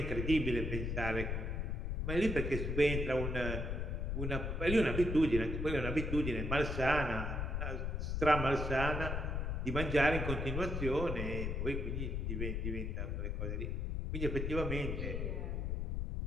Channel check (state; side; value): noise; left; rumble, 1 dB below the sound